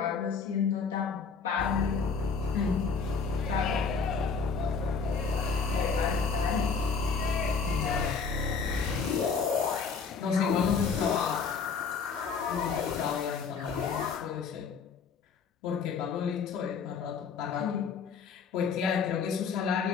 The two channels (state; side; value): quieter; right; 5.5 dB